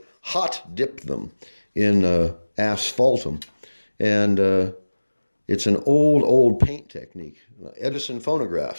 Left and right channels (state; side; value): inverted; both; correlation -1.00